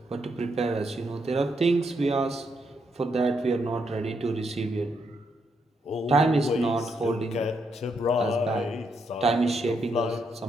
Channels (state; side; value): normal; both; correlation 0.78